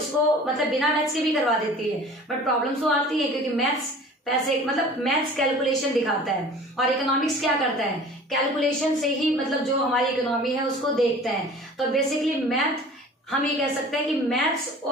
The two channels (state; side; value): normal; both; correlation 0.44